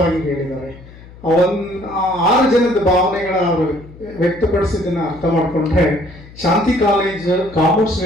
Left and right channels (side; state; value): left; noise; hum, 20 dB below the sound